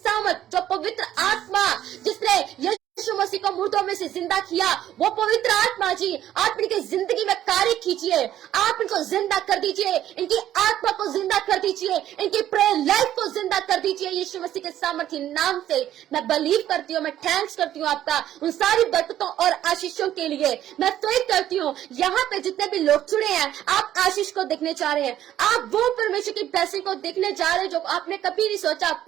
जो पवित्र आत्मा जिसने यीशु मसीह को मुर्दों में से जिंदा किया, वो पवित्र आत्मा जी आप इनकी जिंदगी में कार्य कीजिए। आप इनको जिंदा कर दीजिए, इनकी आत्मा को जिंदा कर दीजिए, इनकी प्रेयर लाइफ को जिंदा कर दीजिए यीशु मसीह के सामर्थ्य नाम से। मैं बिलीव करती हूँ, मैं थैंक्स करती हूँ आपका उन सारी बरकतों और आशीषों के लिए। मैं फेथ करती हूँ यहाँ पे जितने भी लोग जुड़े हैं, आप आशीष को देखने जा रहे हैं, आप वो परमेश्वर की ब्लेसिंग को देखने जा रहे हैं जो आपने कभी नहीं सोचा।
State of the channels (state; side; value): quieter; left; 12.0 dB